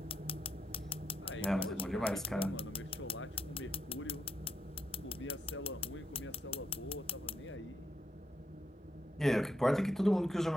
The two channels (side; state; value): both; normal; correlation 0.80